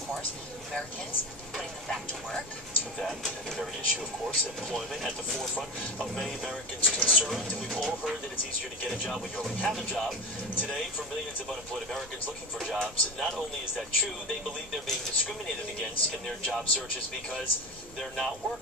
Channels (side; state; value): both; normal; correlation 0.24